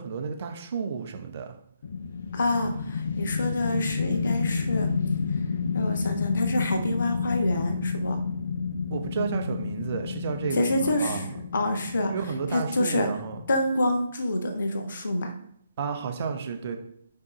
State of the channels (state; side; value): inverted; both; correlation -0.79